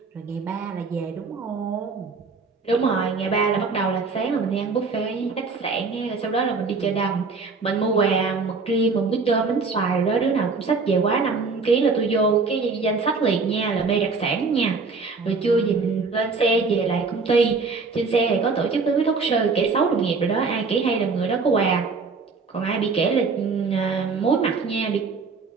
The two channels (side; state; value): left; quieter; 4.4 dB